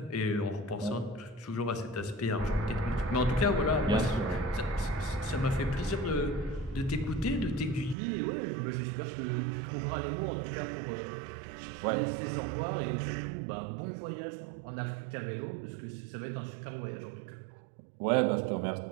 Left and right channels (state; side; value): drops out; left; at 8.0 s